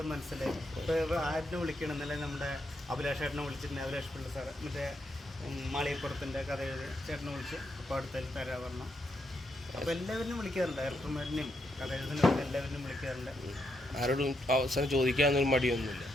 മനസ്സിലായി. ഇപ്പോൾ ആരിനെ വിളിക്കണം എന്നല്ലേ, നമ്മുടെ അഭിലാഷ് ചേട്ടനെ വിളിച്ചിട്ടുണ്ട്. അഭിലാഷ് പിള്ള സാറ് മറ്റേ മാളികപ്പുറത്തിൻ്റെ കഥ എഴുതി ചേട്ടനെ വിളിച്ച് അപ്പോൾ അടുത്തതിൽ തരാൻ പറഞ്ഞു. അപ്പോൾ എല്ലാവരും വിളിക്കാറുണ്ട്, ഡയറക്ടർമാരിനെയും കഥ എഴുതുന്നവരും എല്ലാവരും വിളിക്കാറുണ്ട്. ആരോടും അവസരം ചോദിക്കാനൊന്നും മടിയൊന്നുമില്ല.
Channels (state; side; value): normal; both; correlation 0.80